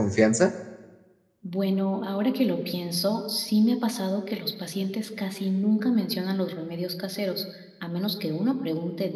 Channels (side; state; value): both; identical; correlation 1.00